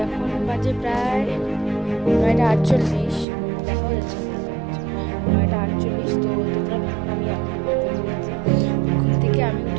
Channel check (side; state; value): left; drops out; at 3.2 s